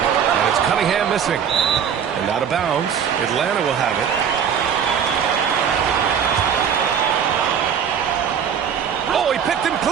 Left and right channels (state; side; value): quieter; left; 7.9 dB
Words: it's Cunningham missing. And out of bounds. Atlanta will have it. Oh, he picked him